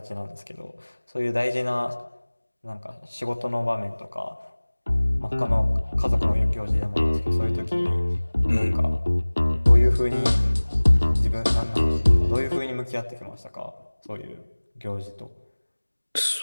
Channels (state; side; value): inverted; both; correlation -1.00